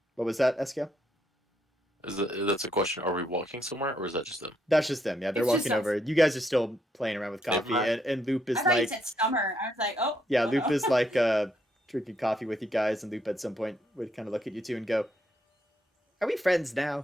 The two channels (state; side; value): normal; both; correlation 0.75